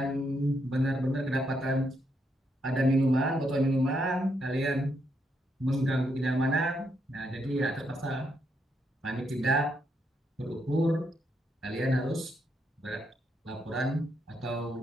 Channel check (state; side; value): normal; both; correlation 0.78